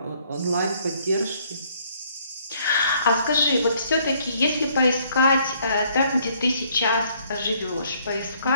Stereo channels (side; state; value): both; inverted; correlation -0.65